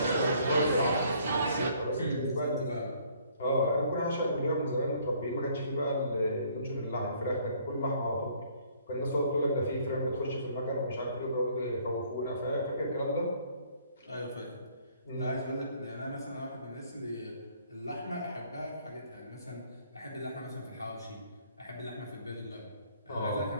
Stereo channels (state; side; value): inverted; both; correlation -0.61